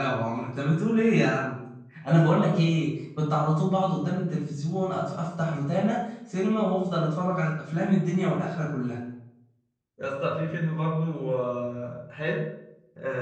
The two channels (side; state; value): both; identical; correlation 1.00